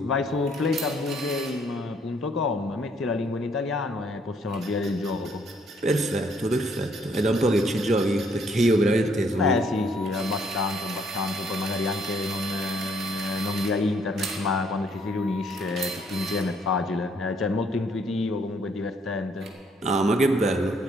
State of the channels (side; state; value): both; normal; correlation 0.67